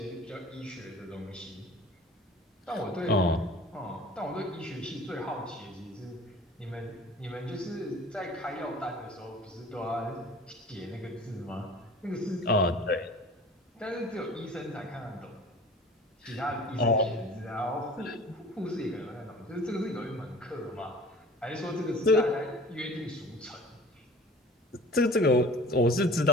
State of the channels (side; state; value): both; normal; correlation 0.44